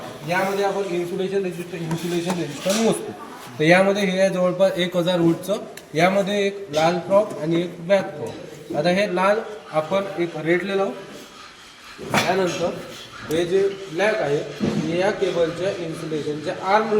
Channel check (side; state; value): both; identical; correlation 1.00